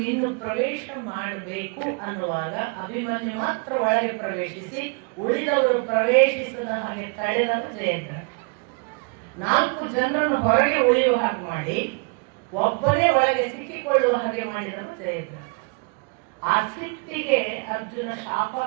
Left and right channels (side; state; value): left; quieter; 32.9 dB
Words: ಇನ್ನು ಪ್ರವೇಶ ಮಾಡಬೇಕು ಅನ್ನುವಾಗ ಅಭಿಮನ್ಯು ಮಾತ್ರ ಒಳಗೆ ಪ್ರವೇಶಿಸಿ ಉಳಿದವರು ಪ್ರವೇಶಿಸದ ಹಾಗೆ ತಡೆದ ಜಯದ್ರಥ. 4 ಜನರನ್ನು ಹೊರಗೆ ಉಳಿಯುವ ಹಾಗೆ ಮಾಡಿ ಒಬ್ಬನೇ ಒಳಗೆ ಸಿಕ್ಕಿಕೊಳ್ಳುವ ಹಾಗೆ ಮಾಡಿದರು ಜಯದ್ರಥ. ಆ ಸಿಟ್ಟಿಗೆ ಅರ್ಜುನ ಶಾಪ